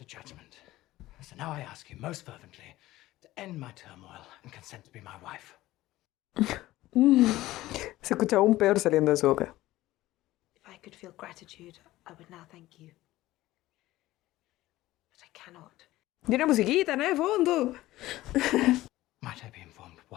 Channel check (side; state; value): right; quieter; 16.6 dB